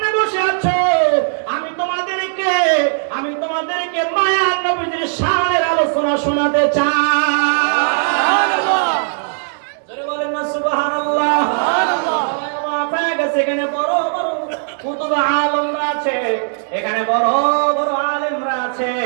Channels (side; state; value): left; silent; digital silence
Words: বসে আছো, আমি তোমাদেরকে মায়ার নবীজির শানের আলোচনা শোনাতে চাই। জোরে বলেন না সুবহানাল্লাহ। এখানে বড় বড় কুতুব আলেমরা আছে, এখানে বড় বড় আলেমরা আছে।